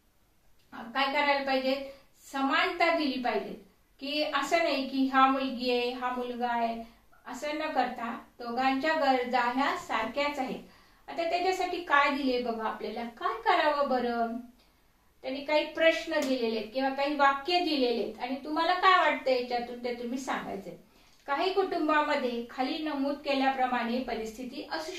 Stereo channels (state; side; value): identical; both; correlation 1.00